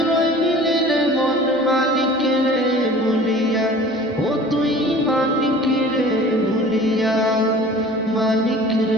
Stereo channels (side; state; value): right; noise; hum, 28 dB below the sound